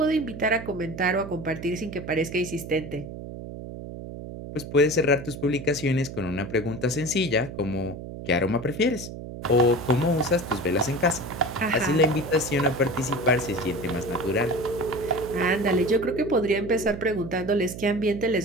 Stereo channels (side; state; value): right; noise; hum, 10 dB below the sound